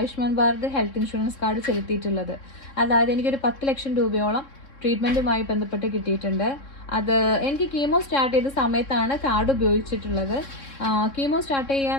Bharat health insurance card ചെലുത്തിയിട്ടുള്ളത്. അതായത് എനിക്കൊരു 10 ലക്ഷം രൂപയോളം ട്രീറ്റ്മെൻറ്റുമായി ബന്ധപ്പെട്ട് കിട്ടിയിട്ടുണ്ട്. അത് എനിക്ക് കീമോ സ്റ്റാർട്ട് ചെയ്ത സമയത്താണ് കാർഡ് ഉപയോഗിച്ചിട്ടുള്ളത്. കീമോ സ്റ്റാർട്ട് ചെയ്യുക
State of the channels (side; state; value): right; late; 3.6 ms